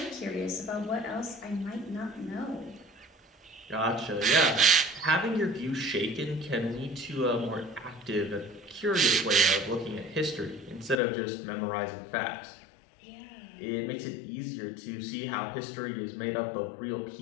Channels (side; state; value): right; drops out; at 11.0 s